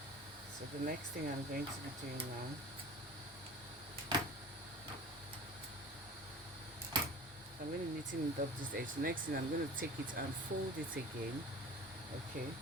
So the next thing I'm going to be doing now, I'm going to neaten up this edge. The next thing I'm going to take it and fold it again. Okay,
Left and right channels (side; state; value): both; normal; correlation 0.39